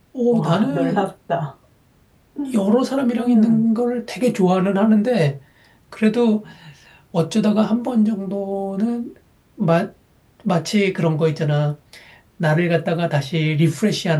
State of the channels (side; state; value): both; identical; correlation 1.00